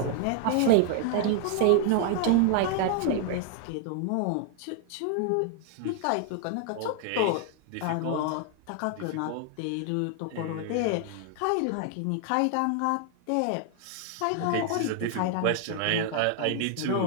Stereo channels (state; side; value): different; both; correlation 0.00